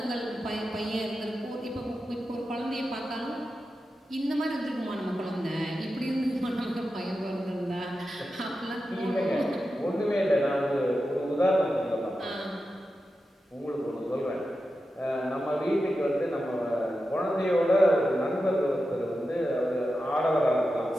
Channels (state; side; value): normal; both; correlation 0.91